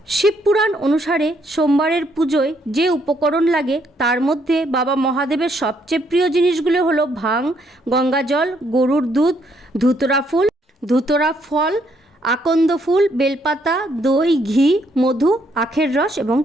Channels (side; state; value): both; normal; correlation 0.71